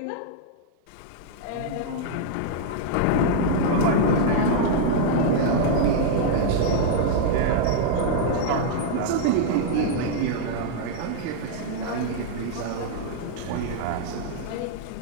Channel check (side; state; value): both; different; correlation -0.01